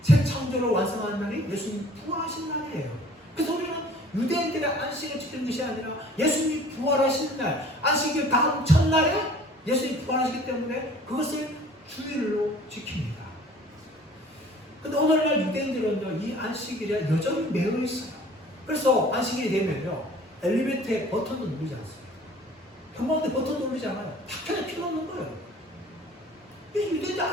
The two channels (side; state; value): both; normal; correlation 0.50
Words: 새 창조를 완성하는 날이 예수님 부활하신 날이에요. 그래서 우리는 유대인들의 안식을 지키는 것이 아니라 예수님이 부활하신 날, 안식일 다음 첫날에 예수님이 부활하시기 때문에 그것을 주일로 지킵니다. 근데 오늘날 유대인들은요, 이 안식일에 여전히 매여 있어요. 그래서 안식일이 되면요, 엘리베이터에 버튼도 누르지 않습니다. 평범한데 버튼 누르지 않아요. 다 그냥 켜놓는 거예요. 이게 유대인들